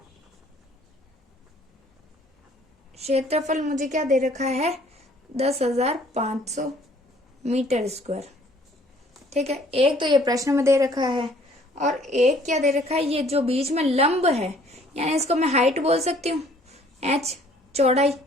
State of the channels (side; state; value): both; normal; correlation 0.58